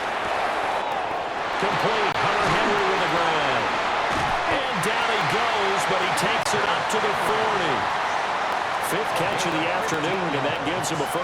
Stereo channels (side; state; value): both; identical; correlation 1.00